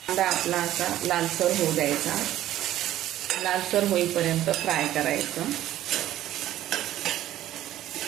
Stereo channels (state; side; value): quieter; left; 13.3 dB